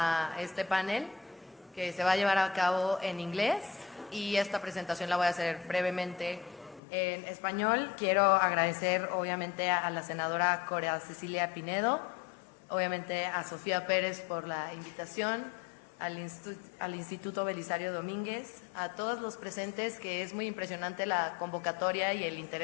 este panel que se va a llevar a cabo en inglés y esta presentación la voy a hacer brevemente en español. Quiero agradecer obviamente a la senadora Corea Cecilia Pinedo, obviamente a Sofía Pérez por la invitación, al Instituto Belisario Domínguez, a todos los presentes, que es muy impresionante la convocatoria y el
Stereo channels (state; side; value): drops out; right; at 6.8 s